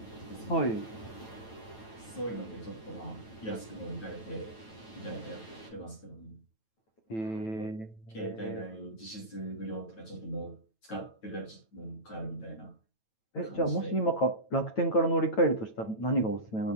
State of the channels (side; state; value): right; late; 9.1 ms